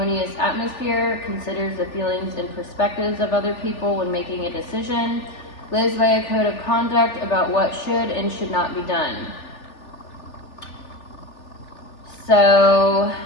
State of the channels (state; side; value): late; right; 3.4 ms